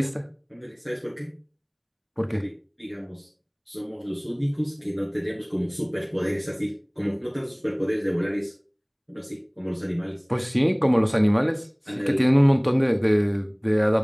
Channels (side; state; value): both; identical; correlation 1.00